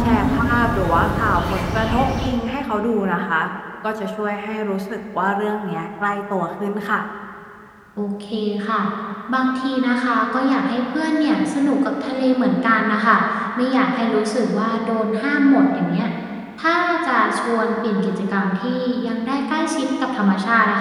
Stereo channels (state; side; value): identical; both; correlation 1.00